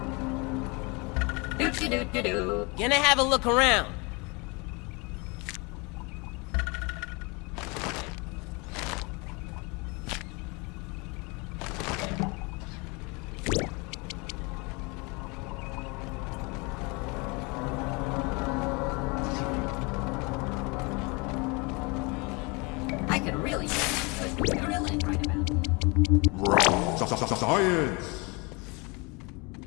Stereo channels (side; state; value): right; quieter; 28.6 dB